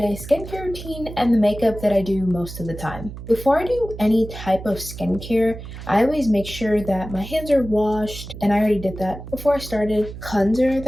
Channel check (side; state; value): right; noise; hum, 12 dB below the sound